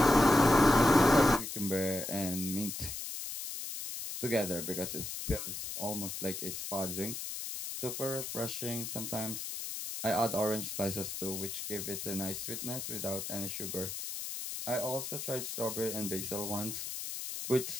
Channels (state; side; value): noise; left; hiss, 6 dB below the sound